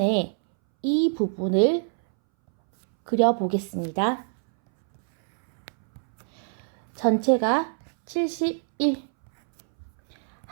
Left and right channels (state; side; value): silent; left; 62 dB below the other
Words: 이 부분을 그려보겠습니다. 전체가 71,